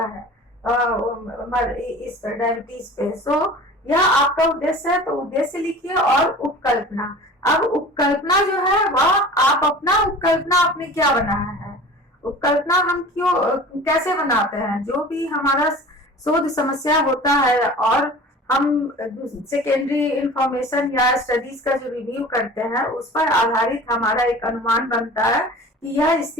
है इस डायबिटीज पे। सो यह आपका उद्देश्य है, तो उद्देश्य लिखिए और उपकल्पना। अब उपकल्पना जो है वह आप अपना उपकल्पना आपने क्या बनाया है, उपकल्पना हम क्यों कैसे बनाते हैं। जो भी हमारा शोध समस्या होता है और हम सेकेंडरी इंफॉर्मेशन या स्टडीज का जो रिव्यू करते हैं उस पर आधारित हमारा एक अनुमान बनता है कि यह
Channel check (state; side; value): normal; both; correlation 0.41